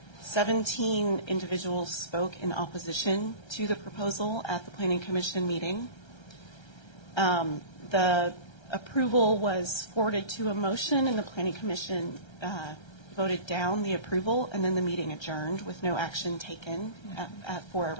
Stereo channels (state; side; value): late; right; 1.3 ms